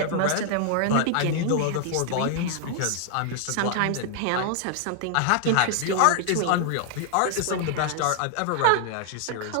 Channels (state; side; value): different; both; correlation 0.00